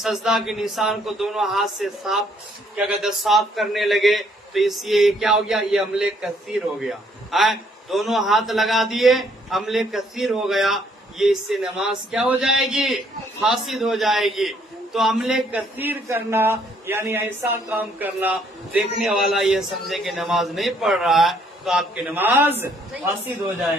سجدہ کے نشان کو دونوں ہاتھ سے صاف کرنے لگے، تو اس یہ کیا ہو گیا؟ یہ عمل کثیر ہو گیا۔ دونوں ہاتھ لگا دیے، عمل کثیر ہو گیا، یہ اس سے نماز کیا ہو جائے گی؟ فاسد ہو جائے گی۔ تو عمل کثیر کرنا یعنی ایسا کام کرنا دیکھنے والا یہ سمجھے کہ نماز نہیں پڑھ رہا ہے، تو آپ کی نماز فاسد ہو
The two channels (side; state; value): both; normal; correlation 0.66